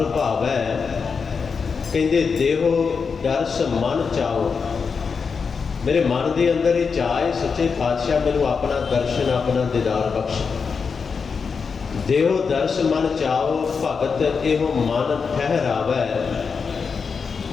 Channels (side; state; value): right; quieter; 5.5 dB